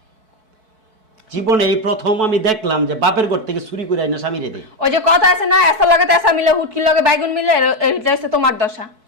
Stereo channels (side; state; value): left; late; 4.6 ms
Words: জীবনে এই প্রথম আমি দেখলাম যে বাপের ঘর থেকে চুরি করে আইনা স্বামী রে দেয়। ওই যে কথা আছে না, এসার লগে তেসা মিলে, হুটকির লগে বাইগুন মিলে, এটা হচ্ছে তোমার দশা।